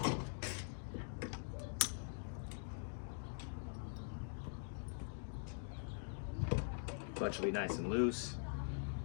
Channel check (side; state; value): right; silent; digital silence